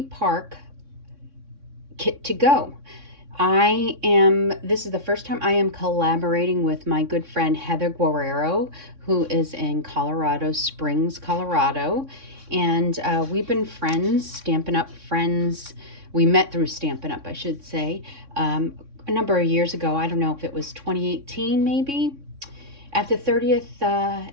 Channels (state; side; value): late; left; 3.6 ms